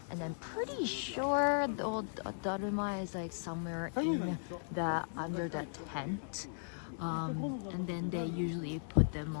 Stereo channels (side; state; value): right; silent; digital silence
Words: and then pretty sure the old Daruma is like somewhere in the under the tent. And then they usually put them